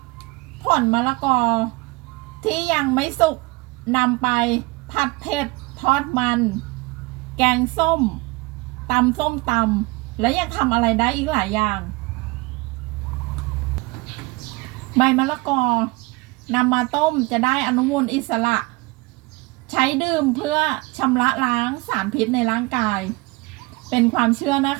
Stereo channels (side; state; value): left; quieter; 25.1 dB